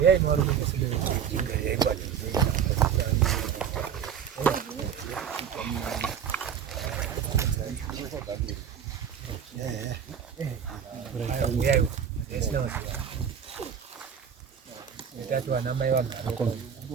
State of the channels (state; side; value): quieter; left; 8.0 dB